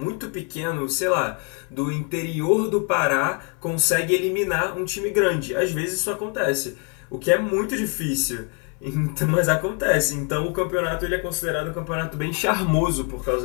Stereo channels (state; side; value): quieter; right; 38.3 dB